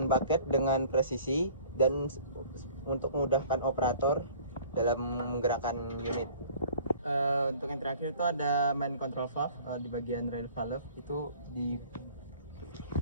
bucket dengan presisi, dan untuk memudahkan operator dalam menggerakkan unit. Untuk yang terakhir itu ada main control valve di bagian rail valve, itu di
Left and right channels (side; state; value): both; inverted; correlation -0.49